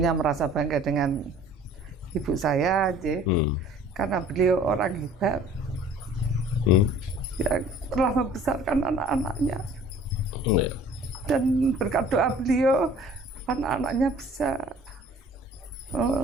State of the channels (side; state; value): both; normal; correlation 0.50